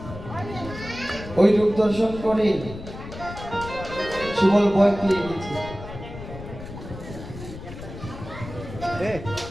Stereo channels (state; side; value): noise; left; rumble, 12 dB below the sound